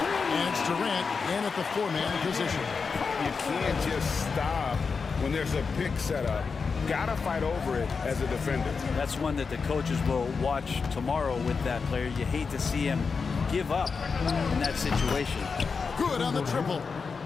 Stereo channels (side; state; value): right; quieter; 5.1 dB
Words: it's Durant in at the four-man position. You can't just stop when there's a pick set up. Gotta fight over it as a defender. That's one that the coaches will watch tomorrow with that player. You hate to see him give up in that situation. Good on the triple.